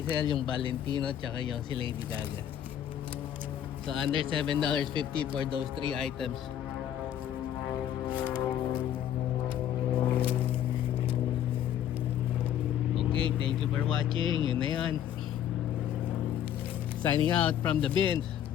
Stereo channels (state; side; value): quieter; right; 10.4 dB